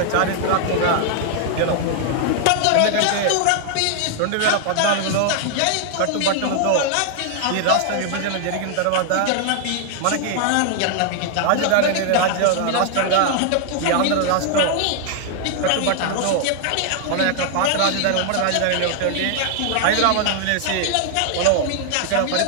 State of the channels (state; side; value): different; both; correlation 0.00